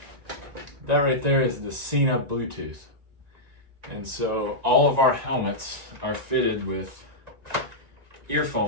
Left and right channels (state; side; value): late; left; 1.9 ms